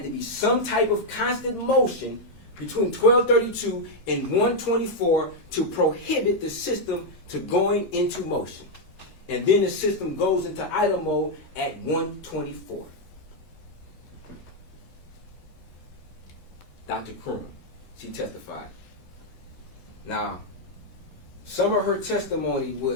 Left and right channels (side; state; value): right; late; 9.9 ms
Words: to be some type of constant motion between 12:32 and 1:24 to prohibit the system to going into motion. And then the system goes into idle mode at 1:24. Dr. Krum, she testified. Now, some of her testimony